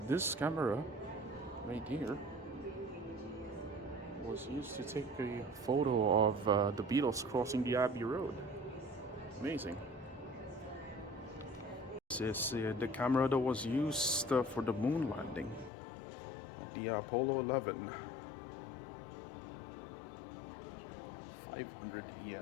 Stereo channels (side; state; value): right; drops out; at 15.7 s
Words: camera right here was used to take a photo of the Beatles crossing the Abbey Road. Amazing. This is the camera that was used for the moon landing at the Apollo 11. 500